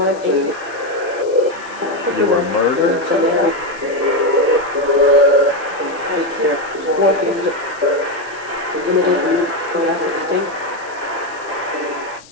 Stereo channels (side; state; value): left; noise; hiss, 23 dB below the sound